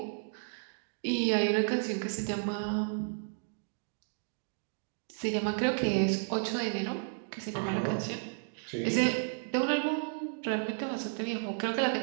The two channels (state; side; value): silent; left; digital silence